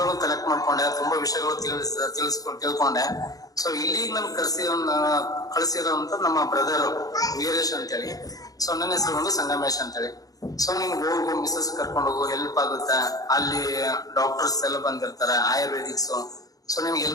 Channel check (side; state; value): right; late; 0.18 ms